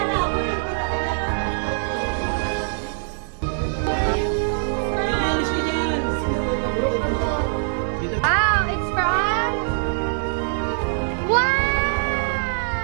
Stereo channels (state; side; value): silent; left; digital silence